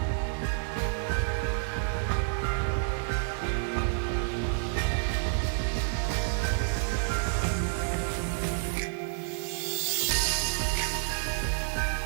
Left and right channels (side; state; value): left; silent; digital silence